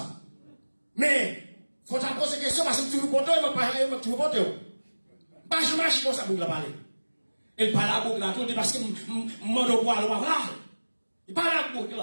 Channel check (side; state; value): both; inverted; correlation -1.00